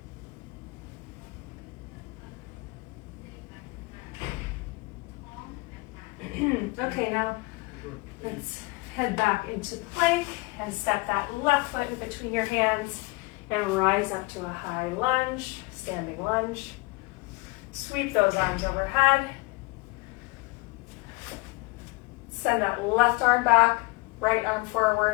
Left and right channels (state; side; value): quieter; right; 24.8 dB